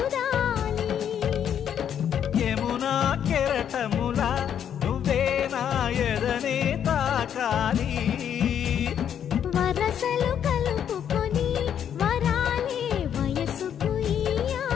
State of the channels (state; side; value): quieter; right; 9.0 dB